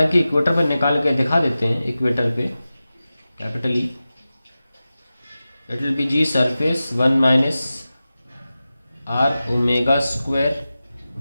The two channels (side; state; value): both; inverted; correlation -0.95